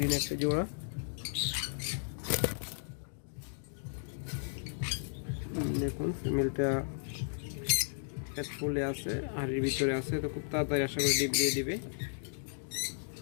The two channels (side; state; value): right; silent; digital silence